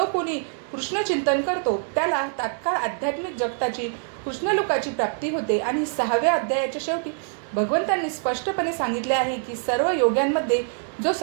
कोणी कृष्ण चिंतन करतो त्याला तात्काळ आध्यात्मिक जगताची कृष्णलोकाची प्राप्ती होते. आणि 6व्या अध्यायाच्या शेवटी भगवंतांनी स्पष्टपणे सांगितले आहे की सर्व योग्यांमध्ये जो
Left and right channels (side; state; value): left; silent; 62 dB below the other